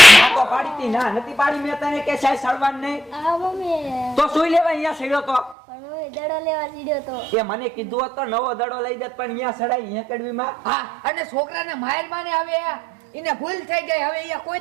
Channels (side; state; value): left; drops out; at 5.6 s